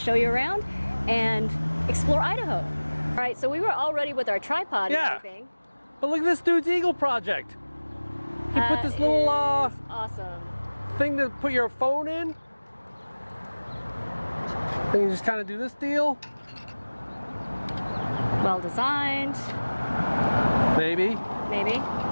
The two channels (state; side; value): inverted; both; correlation -1.00